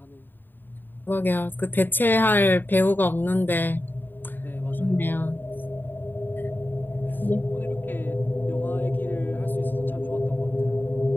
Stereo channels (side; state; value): right; late; 0.093 ms